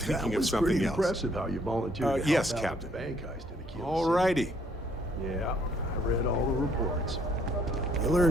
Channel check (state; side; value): normal; both; correlation 0.66